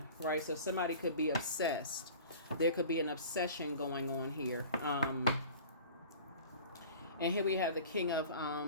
right? So somebody could be obsessed. There could be an obsession going on here. And here we have the King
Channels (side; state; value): both; inverted; correlation -0.42